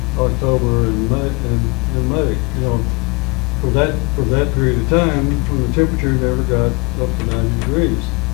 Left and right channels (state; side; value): quieter; right; 28.0 dB